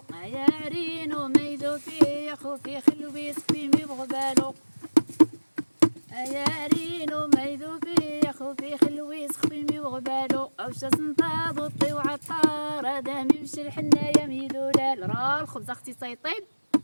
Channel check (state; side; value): inverted; both; correlation -1.00